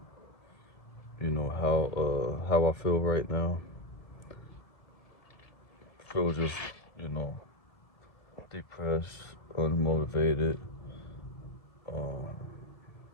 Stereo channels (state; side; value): late; right; 1.8 ms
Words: how I feel right now. I feel just, depressed, unmotivated,